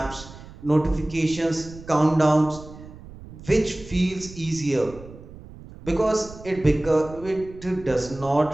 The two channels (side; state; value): right; noise; rumble, 17 dB below the sound